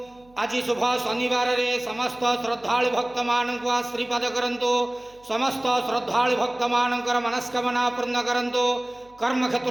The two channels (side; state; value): right; noise; hum, 29 dB below the sound